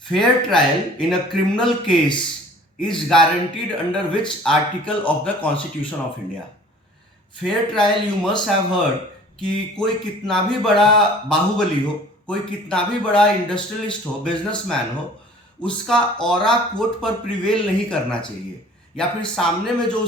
Fair trial in a criminal case is guaranteed under which article of the Constitution of India? Fair trial you must have heard कि कोई कितना भी बड़ा बाहुबली हो, कोई कितना भी बड़ा इंडस्ट्रियलिस्ट हो, बिजनेसमैन हो, उसका ऑरा कोर्ट पर प्रिवेल नहीं करना चाहिए, या फिर सामने में जो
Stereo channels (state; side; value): normal; both; correlation 0.49